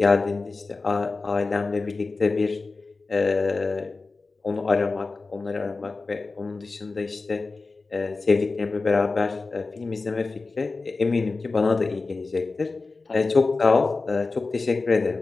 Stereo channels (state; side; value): quieter; right; 3.8 dB